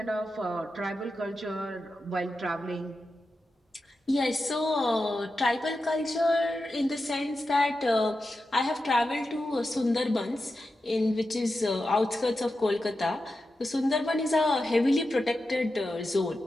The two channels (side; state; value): both; normal; correlation 0.90